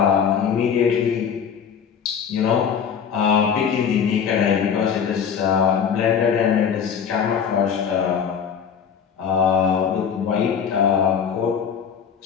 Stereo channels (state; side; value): quieter; right; 7.3 dB